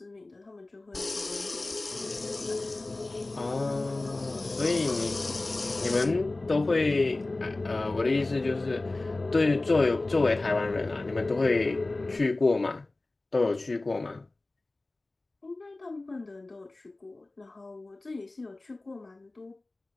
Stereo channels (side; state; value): right; quieter; 3.0 dB